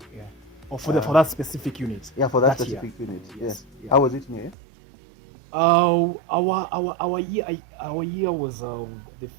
Yeah. Or for that specific unit. Yeah, for that That specific unit. Yes. Yes. Yeah. How was it in here? Our year was the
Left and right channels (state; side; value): drops out; left; at 4.5 s